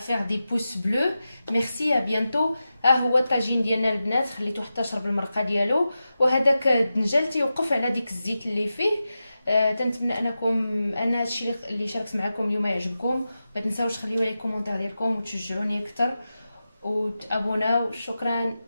faire des pouces bleus. Merci, à bientôt. ها هو الطاجين ديالنا البنات، خليته حتى شرب المرقه ديالو، وهذاك الدنجال تيوقف على ديك الزيت اللي فيه. تنتمنى ان هادشي اللي شاركت معكم اليوم يعجبكم. ما تنساوش تخليو لي كومونتير ديالكم وتشجعوني اكثر وتابوناو. شكرا،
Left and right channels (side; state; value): both; inverted; correlation -0.92